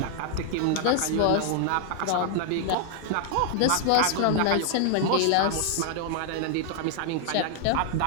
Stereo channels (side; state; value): both; different; correlation 0.00